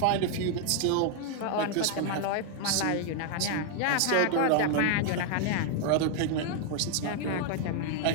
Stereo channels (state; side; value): different; both; correlation 0.00